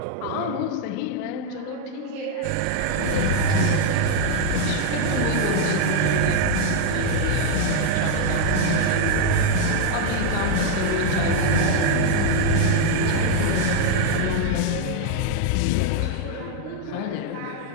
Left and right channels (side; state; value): both; different; correlation 0.00